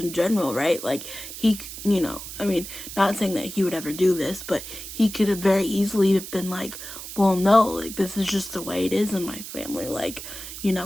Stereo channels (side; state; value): right; noise; hiss, 10 dB below the sound